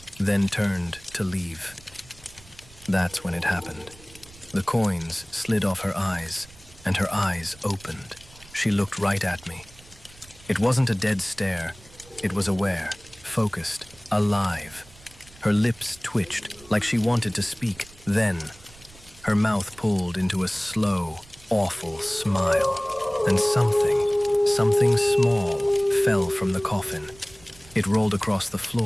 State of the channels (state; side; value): noise; right; rumble, 23 dB below the sound